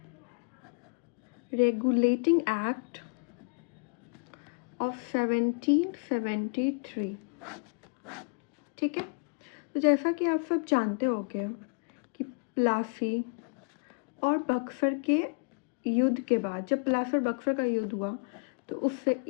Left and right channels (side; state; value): right; quieter; 37.2 dB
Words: रेगुलेटिंग एक्ट ऑफ 1773। ठीक है, तो जैसा कि आप सब जानते होंगे कि प्लासी और बक्सर के युद्ध के बाद, जब प्लासी और बक्सर का युद्ध हुआ तो उससे